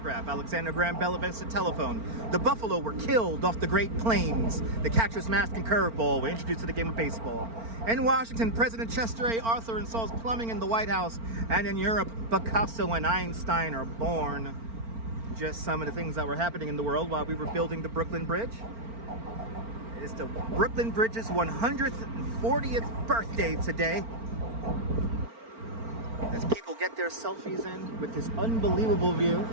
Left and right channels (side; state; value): left; late; 4.4 ms